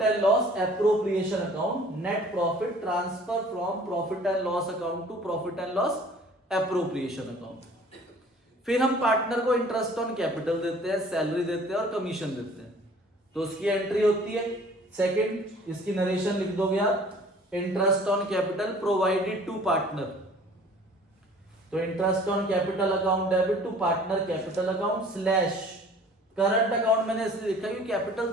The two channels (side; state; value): both; normal; correlation 0.50